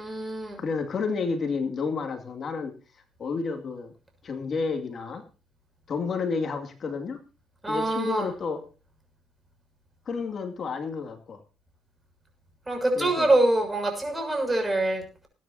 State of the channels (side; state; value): both; normal; correlation 0.83